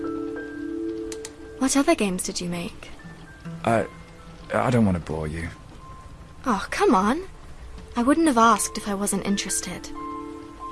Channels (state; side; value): identical; both; correlation 1.00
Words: What other games did you make? I don't want to bore you. Oh, come on. I wouldn't have asked if I wasn't interested.